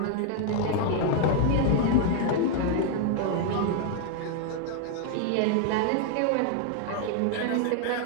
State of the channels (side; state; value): both; different; correlation 0.00